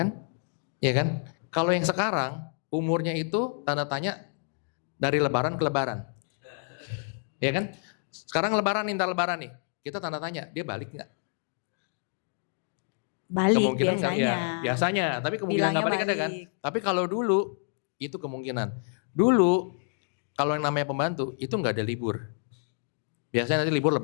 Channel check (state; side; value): silent; right; 55 dB below the other